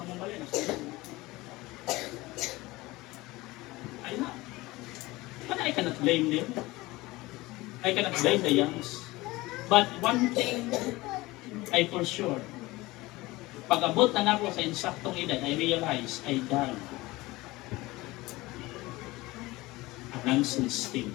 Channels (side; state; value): right; quieter; 20.3 dB